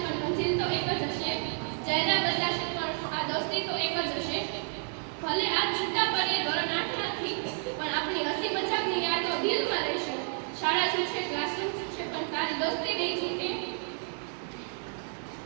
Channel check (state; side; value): silent; left; 55 dB below the other